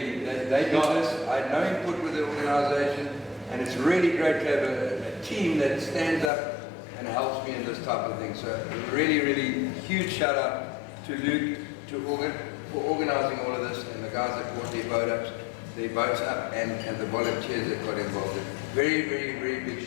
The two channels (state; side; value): drops out; right; at 6.3 s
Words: They did this. I had no input with the organisation, and it's really great to have a team that stands up and helps me in this type of thing. So really, really huge shout out to Luke for organising all of this, and the guys that brought their boats up, and the volunteers that got involved. Very, very, very big